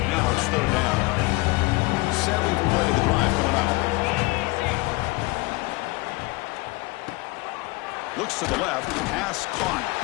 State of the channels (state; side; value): quieter; right; 23.6 dB